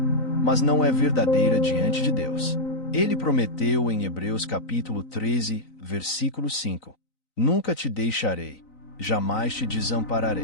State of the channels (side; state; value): right; late; 3.9 ms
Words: mas não é verdadeira diante de Deus. Ele prometeu em Hebreus capítulo 13, versículo 5: "Nunca te deixarei, jamais te